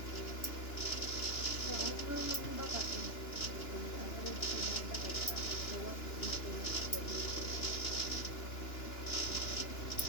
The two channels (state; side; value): late; right; 2.9 ms